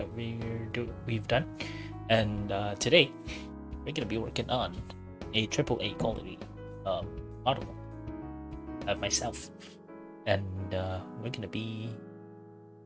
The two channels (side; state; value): both; identical; correlation 1.00